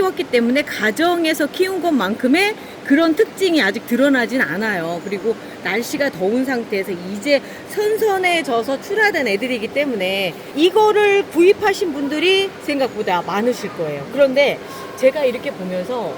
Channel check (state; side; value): identical; both; correlation 1.00